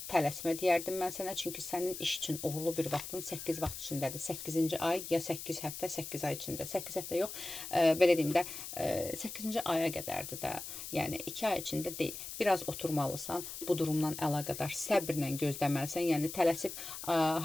tələsmə deyərdim mən sənə. Çünki sənin iş üçün uğurlu bir vaxtın 8 vaxt içindədir. 8-ci ay ya 8 həftə, 8 ay içində. 8 həftə yox, belə deyim də, 8-ci aya qədərdir də. Yəni, 2 ay içində deyil. Biraz oturmalısan, bu durumdan əlaqədar səbrlə gözləməlisən. Yəni, tələsib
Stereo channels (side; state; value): left; noise; hiss, 9 dB below the sound